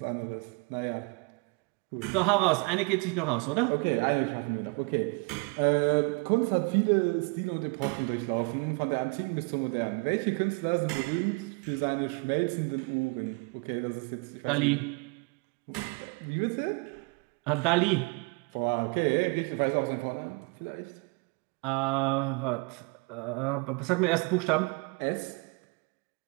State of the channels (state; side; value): quieter; left; 31.3 dB